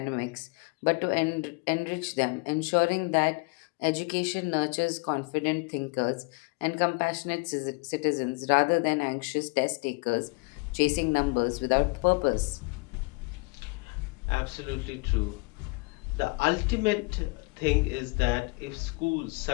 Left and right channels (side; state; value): right; quieter; 29.1 dB